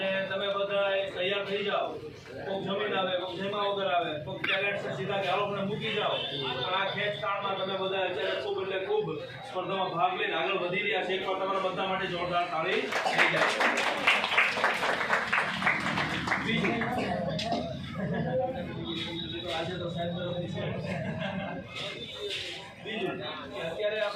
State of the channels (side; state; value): both; identical; correlation 1.00